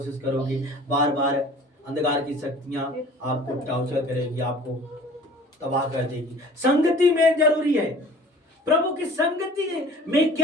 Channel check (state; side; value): normal; both; correlation 0.47